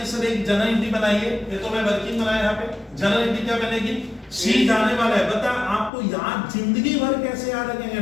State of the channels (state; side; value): drops out; right; at 5.9 s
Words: सर एक जनरल एंट्री बनाइए, ये तो मैं वर्किंग बनाया यहाँ पे, जनरल एंट्री क्या बनेगी सी जाने वाला है, बता आपको याद जिंदगी भर कैसे याद रखेंगे